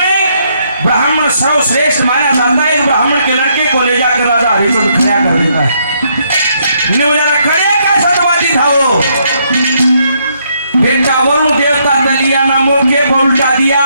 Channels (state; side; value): inverted; both; correlation -0.73